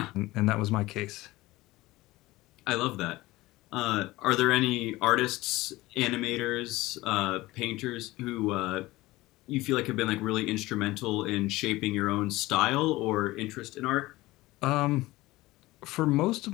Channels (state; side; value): quieter; right; 19.0 dB